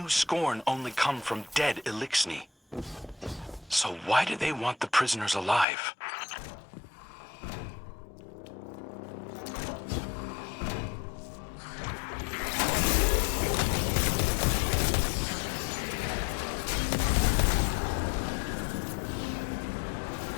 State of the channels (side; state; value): right; drops out; at 5.7 s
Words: Scorn only come from dead Elixni. So why do they want the prisoners alive?